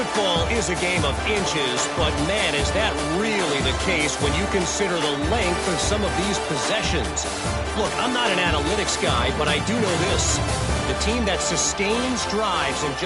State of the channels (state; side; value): identical; both; correlation 1.00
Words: is a game of inches, but man, is that really the case when you consider the length of some of these possessions. Look, I'm not an analytics guy, but I do know this. The team that sustains drives and